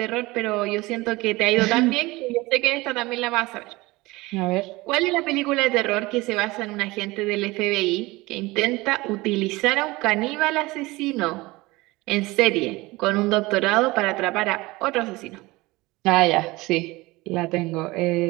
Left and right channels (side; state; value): left; quieter; 21.4 dB